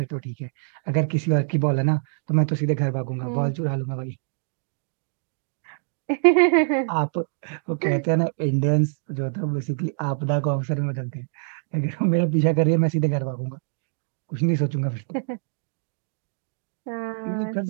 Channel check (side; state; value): left; silent; digital silence